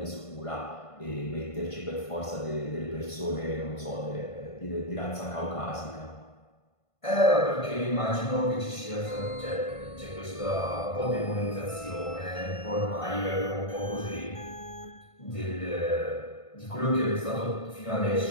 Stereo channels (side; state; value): right; late; 1.5 ms